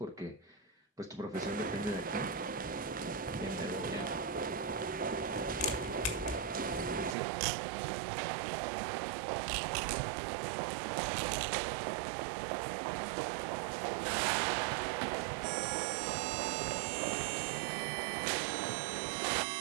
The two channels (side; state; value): left; drops out; at 7.2 s